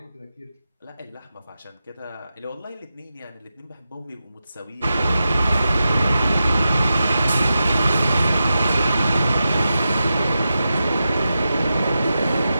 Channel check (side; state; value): both; inverted; correlation -0.91